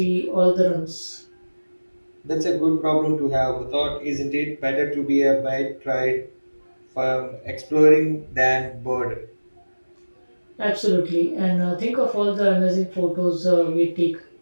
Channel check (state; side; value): inverted; both; correlation -1.00